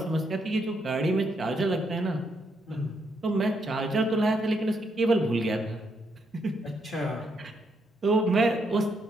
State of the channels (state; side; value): normal; both; correlation 0.77